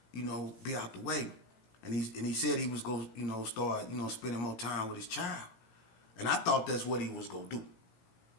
you know, be out the way? And he said he was going to, you know, start, you know, spending more time with his child. And I thought that's what he was going to do.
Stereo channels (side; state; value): right; late; 18 ms